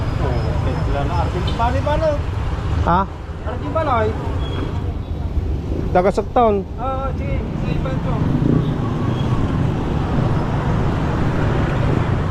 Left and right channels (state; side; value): identical; both; correlation 1.00